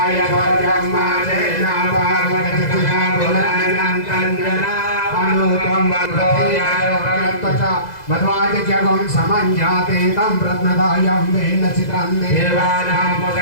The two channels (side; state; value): right; late; 2.0 ms